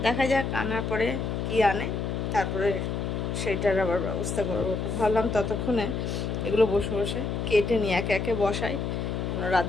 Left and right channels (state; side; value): noise; left; hum, 2 dB below the sound